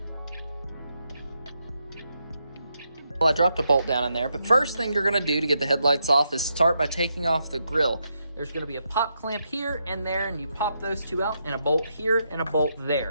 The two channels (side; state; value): both; inverted; correlation -0.81